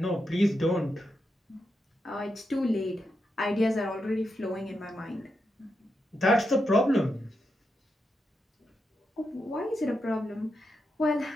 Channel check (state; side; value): normal; both; correlation 0.85